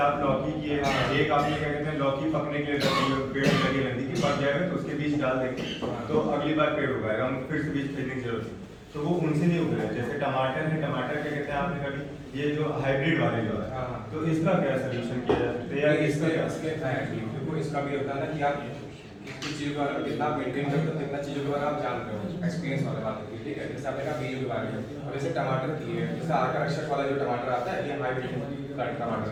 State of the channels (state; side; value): identical; both; correlation 1.00